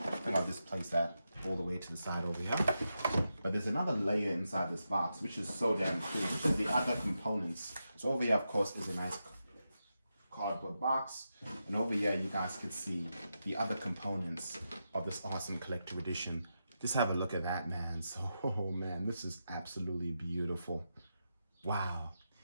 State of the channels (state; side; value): inverted; both; correlation -0.87